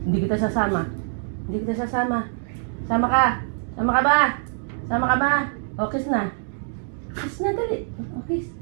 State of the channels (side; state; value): left; silent; digital silence